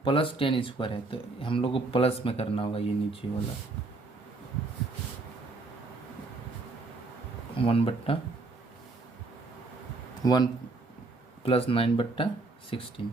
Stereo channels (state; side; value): quieter; left; 3.4 dB